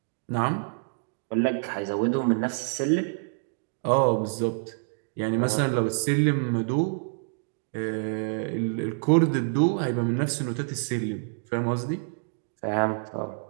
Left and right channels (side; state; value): left; silent; digital silence